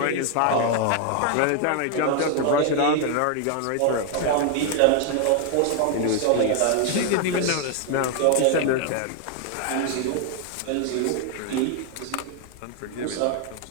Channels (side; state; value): both; different; correlation 0.00